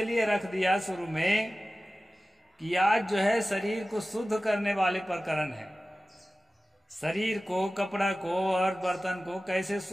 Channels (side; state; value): both; normal; correlation 0.96